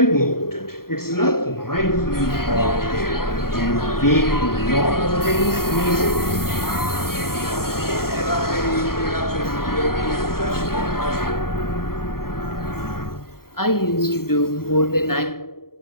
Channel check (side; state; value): right; late; 0.93 ms